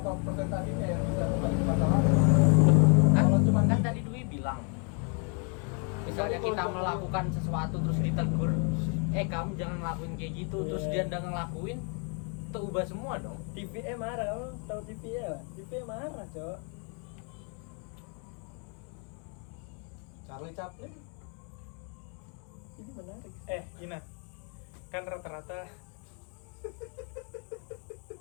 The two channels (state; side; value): quieter; right; 39.3 dB